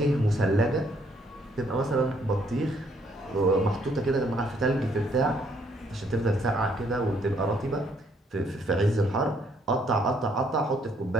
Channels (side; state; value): both; normal; correlation 0.68